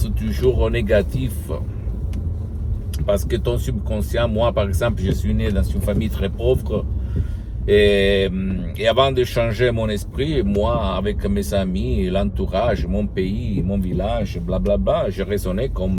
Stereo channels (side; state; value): both; identical; correlation 1.00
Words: toujours au négatif. Parce que ton subconscient, moi par exemple, je suis né dans une famille très pauvre. Et avant de changer mon esprit, moi, avec mes amis, l'entourage, mon pays, mon village, blablabla, je raisonnais